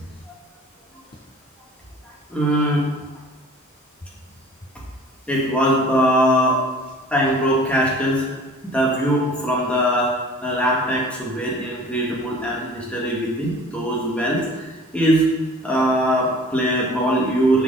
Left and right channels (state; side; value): normal; both; correlation 0.47